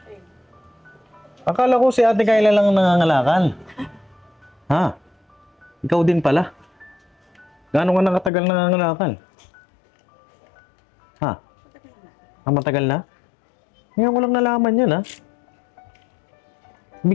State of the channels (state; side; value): drops out; right; at 8.3 s